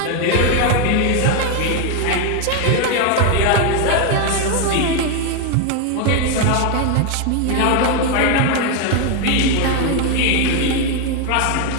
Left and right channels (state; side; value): different; both; correlation 0.01